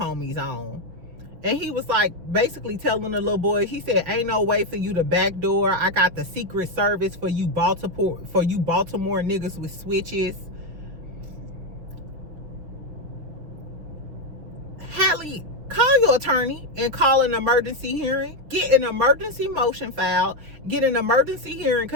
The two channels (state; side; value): late; left; 6.1 ms